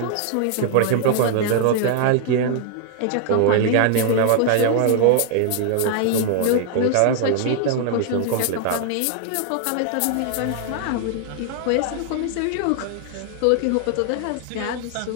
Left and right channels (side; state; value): both; different; correlation 0.00